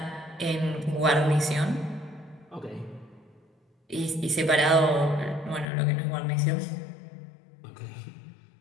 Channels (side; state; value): right; drops out; at 5.7 s